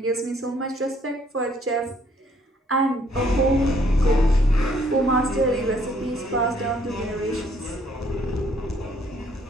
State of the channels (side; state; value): both; normal; correlation 0.65